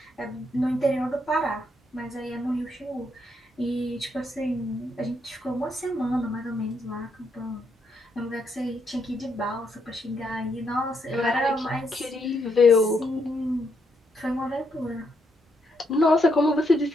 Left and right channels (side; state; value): both; normal; correlation 0.77